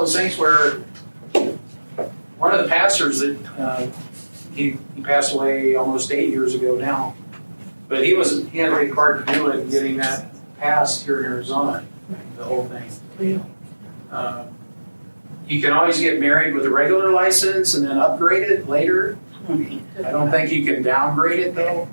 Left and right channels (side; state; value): both; inverted; correlation -1.00